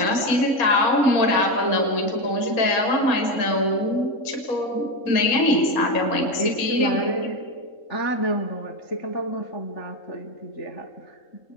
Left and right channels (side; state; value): right; late; 3.7 ms